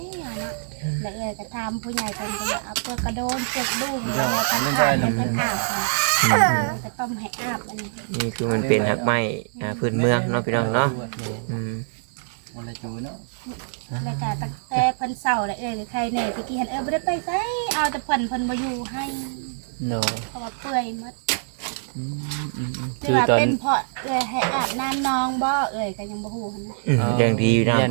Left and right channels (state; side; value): silent; left; 62 dB below the other